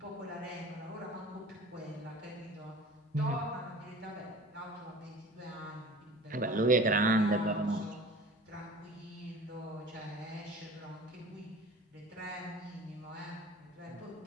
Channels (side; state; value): both; normal; correlation 0.41